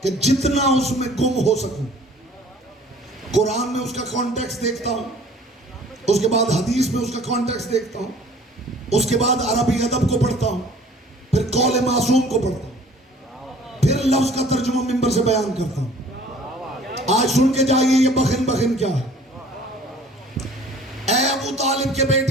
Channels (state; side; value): normal; both; correlation 0.51